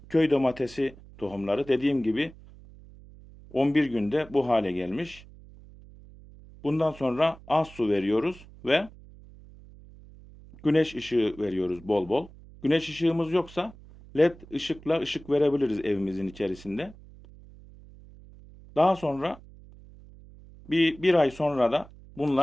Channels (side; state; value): right; noise; hum, 21 dB below the sound